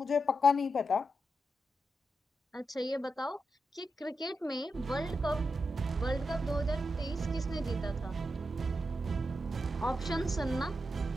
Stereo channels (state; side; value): normal; both; correlation 0.86